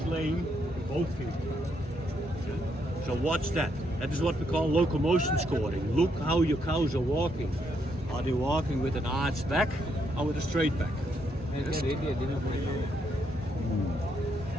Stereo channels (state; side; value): normal; both; correlation 0.76